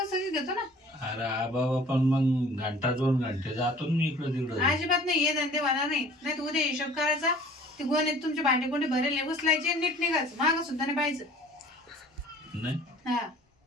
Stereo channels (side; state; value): both; normal; correlation 0.49